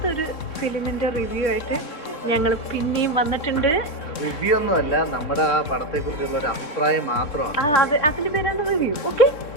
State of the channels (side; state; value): right; late; 3.7 ms